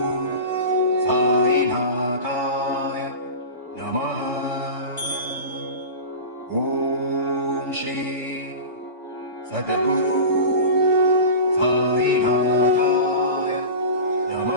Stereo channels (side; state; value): both; inverted; correlation -0.30